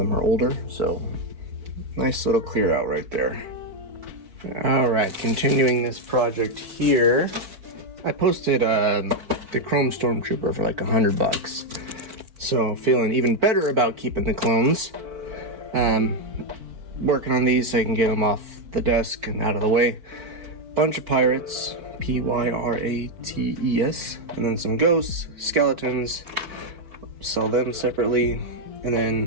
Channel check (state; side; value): late; left; 4.5 ms